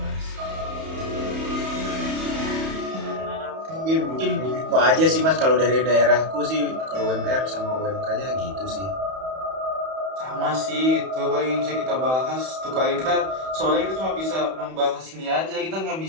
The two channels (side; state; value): left; late; 31 ms